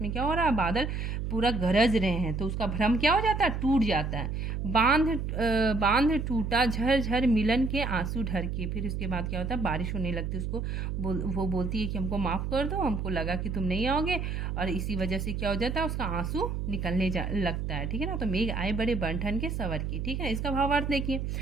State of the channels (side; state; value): right; noise; hum, 3 dB below the sound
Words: में क्या हो रहा है, बादल पूरा गरज रहे हैं, तो उसका भ्रम क्या हो जाता है, टूट जाता है। बांध टूटा झर मिलन के आंसू ढर के। फिर उसके बाद क्या होता है, बारिश होने लगती है। वो बोलती है कि हमको माफ़ कर दो, हमको लगा कि तुम नहीं आओगे, और इसी वजह से क्या हो जाता है, उसका आंसू निकलने लगता है। ठीक है ना, तो मेघ आए बड़े बन के सवर की। ठीक है, इसका भावार्थ देखिए,